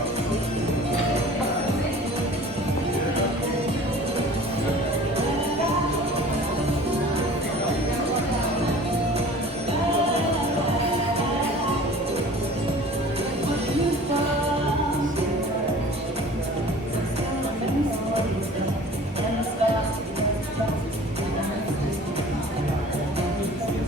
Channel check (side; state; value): both; normal; correlation 0.45